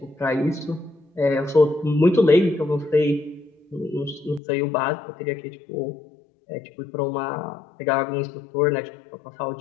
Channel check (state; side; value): drops out; right; at 4.4 s